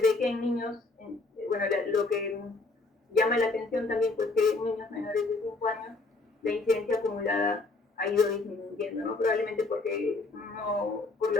que en niños, bueno, lo que llama la atención también, pues que en niños menores de 5 años, la incidencia acumulada ha ido disminuyendo, ¿no? Probablemente porque por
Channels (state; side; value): quieter; right; 3.4 dB